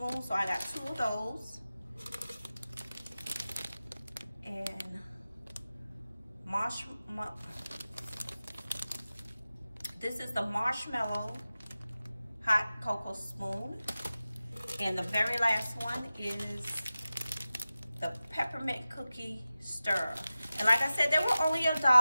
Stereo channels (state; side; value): inverted; both; correlation -0.95